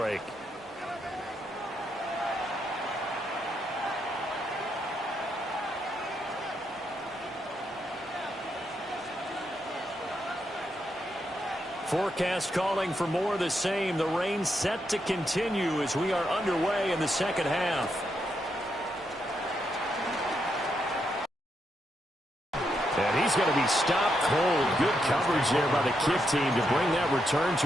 Forecast calling for more of the same. The rain set to continue as we are underway in the second half. And he's going to be stopped cold. Good coverage there by the kick team to bring that return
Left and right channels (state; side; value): normal; both; correlation 0.81